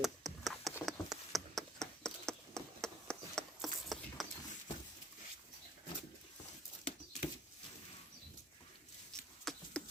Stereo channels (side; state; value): both; normal; correlation 0.57